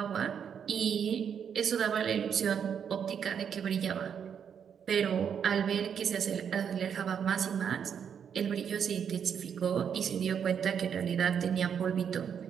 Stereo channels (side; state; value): left; quieter; 7.7 dB